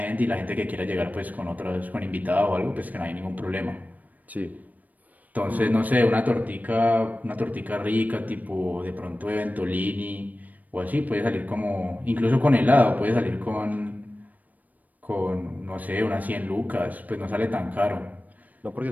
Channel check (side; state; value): left; late; 0.078 ms